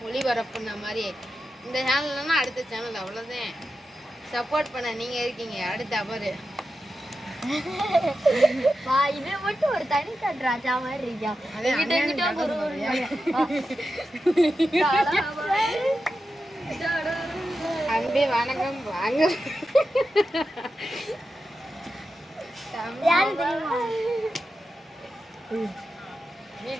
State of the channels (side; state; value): both; normal; correlation 0.90